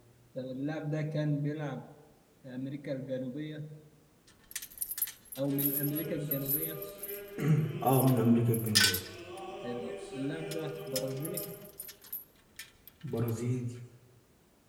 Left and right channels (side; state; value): both; identical; correlation 1.00